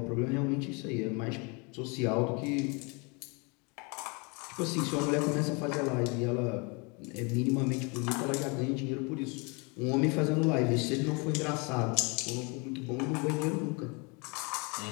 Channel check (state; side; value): quieter; right; 31.1 dB